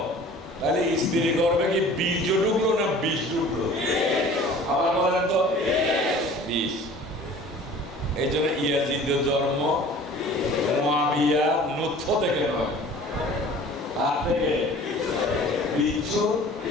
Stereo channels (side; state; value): both; normal; correlation 0.46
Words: তাহলে স্ত্রী করবে কি বীজ ঢুকলো না বিষ ঢুকলো? আবার বলেন তো, বিষ। এই জন্য ইয়াজিদের জন্ম মুআবিয়া নুতফ থেকে নয়, আর থেকে বিচ্ছু